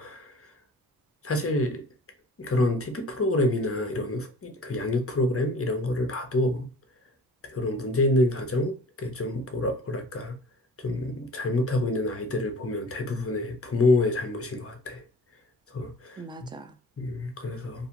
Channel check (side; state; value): both; normal; correlation 0.46